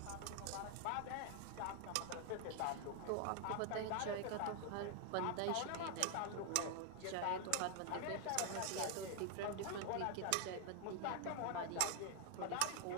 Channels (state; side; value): different; both; correlation 0.00